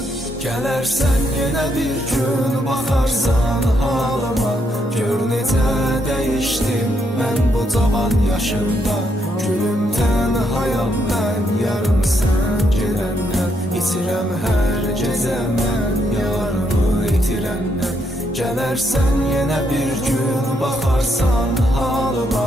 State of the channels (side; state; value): both; normal; correlation 0.76